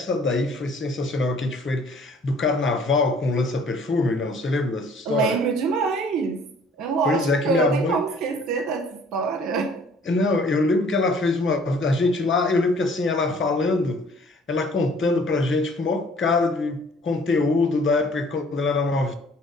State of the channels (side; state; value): both; normal; correlation 0.55